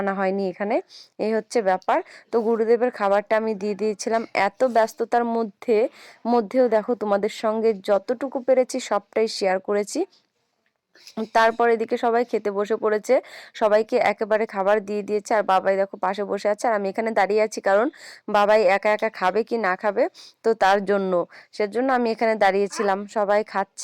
হয়নি এখানে। এই হচ্ছে ব্যাপার। তো গুরুদেবের খাবারটা আমি দিয়ে দিয়েছিলাম এত ব্যস্ততার মধ্যেও দেখো তোমাদের সঙ্গে যতটুকু পেরেছি সবটাই শেয়ার করেছি। তারপর এদিকে সবাই খেতে বসে পড়েছে, সবাইকে একেবারে খাবার দিয়ে দিয়েছে। আর বাবাই দেখো পাশে বসে আছে আর আমি এখানে দাঁড়িয়ে আছি কারণ বাবাই একা একা খাবে কি না খাবে, তো তার জন্য সেজন্য আমি এখানে দাঁড়িয়েছিলাম। সবাই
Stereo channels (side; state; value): both; identical; correlation 1.00